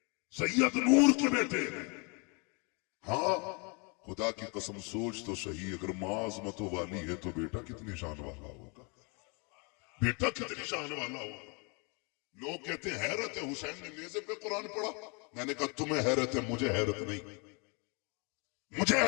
सैयद नूर के बेटे हैं। हाँ, खुदा की कसम सोच तो सही, अगर माँ अज़मतों वाली है तो बेटा कितनी शान वाला होगा, बेटा कितनी शान वाला होगा। लोग कहते हैं हैरत है, हुसैन ने नेज़े पे कुरान पढ़ा। मैंने कहा तुम्हें हैरत है, मुझे हैरत नहीं, मुझे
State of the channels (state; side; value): quieter; right; 32.7 dB